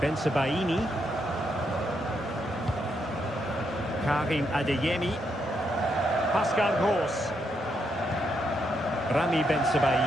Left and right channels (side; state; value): both; normal; correlation 0.79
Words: Karim Adeyemi. Pascal Gross. Rami